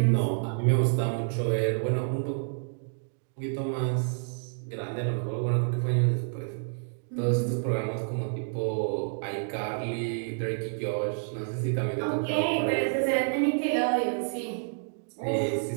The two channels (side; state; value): left; silent; digital silence